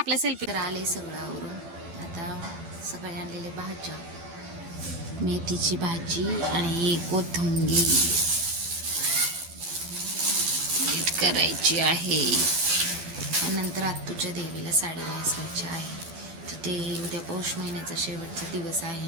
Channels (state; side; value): late; left; 12 ms